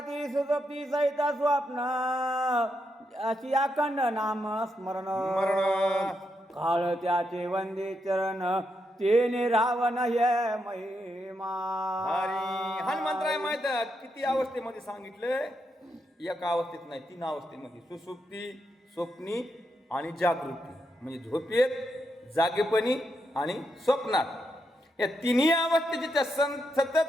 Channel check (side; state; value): both; normal; correlation 0.82